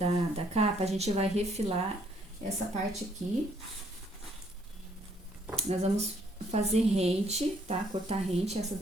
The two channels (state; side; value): normal; both; correlation 0.67